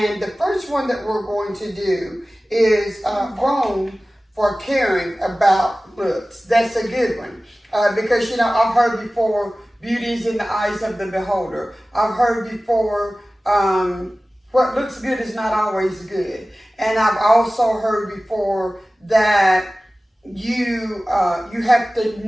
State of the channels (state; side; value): normal; both; correlation 0.97